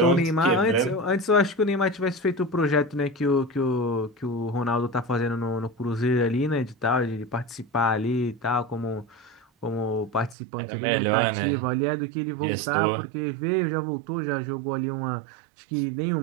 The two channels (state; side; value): drops out; left; at 10.4 s